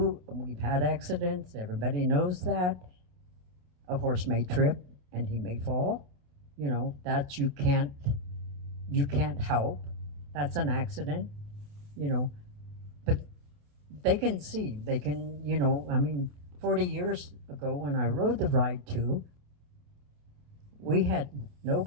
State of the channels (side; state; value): left; late; 28 ms